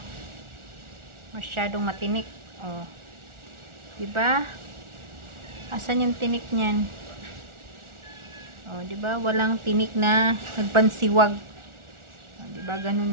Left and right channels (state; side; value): late; left; 1.4 ms